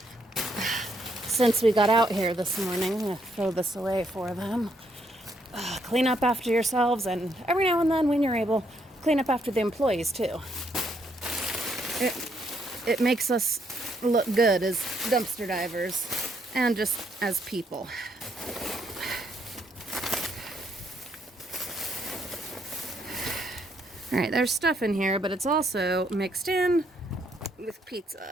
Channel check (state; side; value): normal; both; correlation 0.73